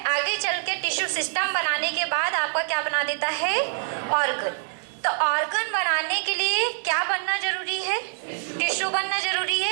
आगे चल के टिश्यू सिस्टम बनाने के बाद आपका क्या बना देता है, ऑर्गन। तो ऑर्गन बनाने के लिए क्या बनना जरूरी है, टिश्यू बनना जरूरी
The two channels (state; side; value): silent; left; 62 dB below the other